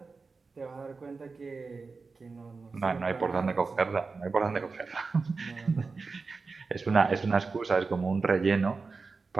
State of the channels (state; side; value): quieter; left; 4.3 dB